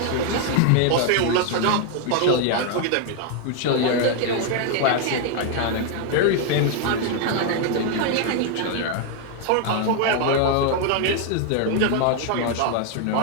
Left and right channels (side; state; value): both; different; correlation 0.00